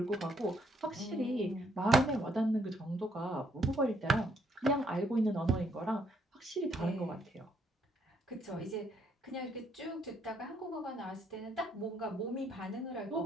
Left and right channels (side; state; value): both; normal; correlation 0.71